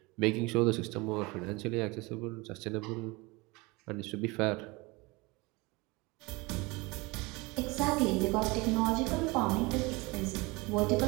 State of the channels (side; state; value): left; quieter; 24.8 dB